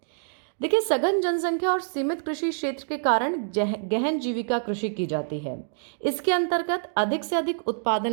देखिए, सघन जनसंख्या और सीमित कृषि क्षेत्र के कारण गहन जीविका कृषि की जाती है। इसके अंतर्गत अधिक से अधिक उत्पादन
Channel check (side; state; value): left; silent; digital silence